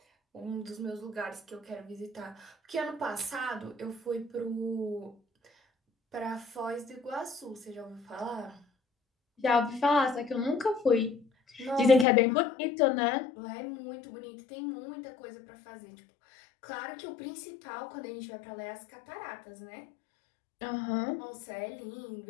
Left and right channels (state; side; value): drops out; right; at 12.1 s